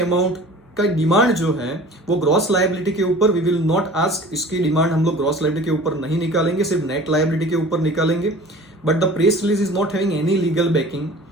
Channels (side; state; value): both; normal; correlation 0.43